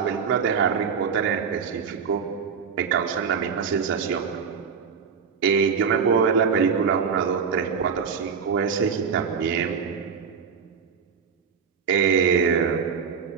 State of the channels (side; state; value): left; quieter; 6.3 dB